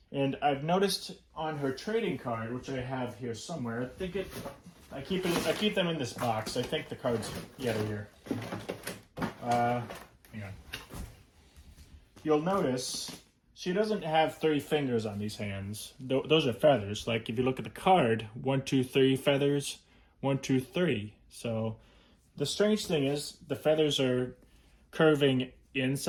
And I've noticed on her trading card, which I have here somewhere, I keep them in this box. I think the cards, yeah, they're here. Hang on. You'll notice she doesn't have 3 fingers on these hands. Those are feathers. Like if you look at the card, 1, 2, 3 feathers, 1, 2, 3. So the strange thing is the feathers are curving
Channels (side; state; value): both; identical; correlation 1.00